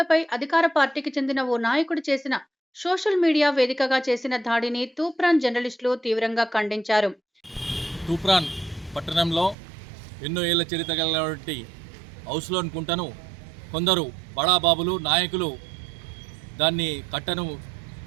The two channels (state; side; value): drops out; left; at 9.6 s